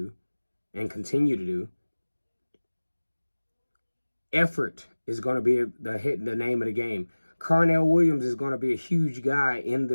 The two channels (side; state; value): both; inverted; correlation -1.00